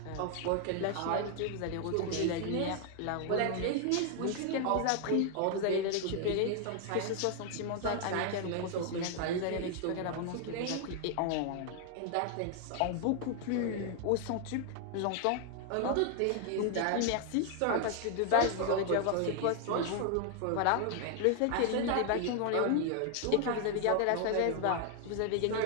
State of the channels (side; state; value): both; different; correlation 0.00